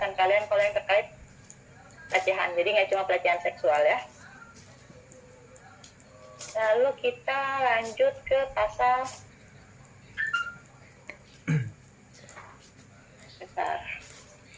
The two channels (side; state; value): both; identical; correlation 1.00